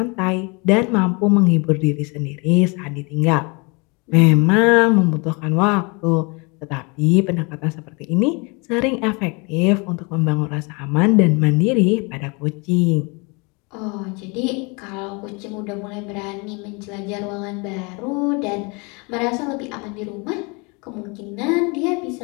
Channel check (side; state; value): right; quieter; 30.0 dB